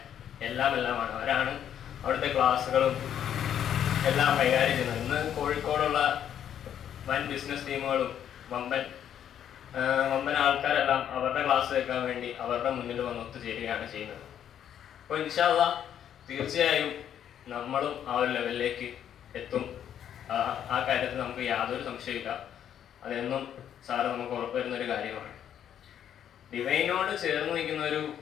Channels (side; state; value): right; quieter; 9.7 dB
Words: എല്ലാമാണ്. അവരാണ് അവിടുത്തെ ക്ലാസ്സുകളും എല്ലാം കൈകാര്യം ചെയ്യുന്നത്. ഇന്ന് കോഴിക്കോടുള്ള വൻ ബിസിനസ് ടീമുകളും വമ്പൻ ആൾക്കാരെല്ലാം അവരുടെ ക്ലാസ് കേൾക്കാൻ വേണ്ടി അവരുടെ മുന്നിൽ വന്ന് ഒത്തുചേരുകയാണ് ചെയ്യുന്നത്. അപ്പോൾ ഇൻഷാ അല്ലാഹ് തീർച്ചയായും നമ്മളും ആ ഒരു ലെവലിലേക്ക് എത്തും. ആ കാര്യത്തിൽ നമുക്ക് യാതൊരു സംശയമില്ല. അതെന്നും സാറ് നമുക്ക് ഉറപ്പുവരുന്നൊരു കാര്യമാണ്. ഡിവൈനോട് ചേർന്ന് നിൽക്കുന്ന ഒരു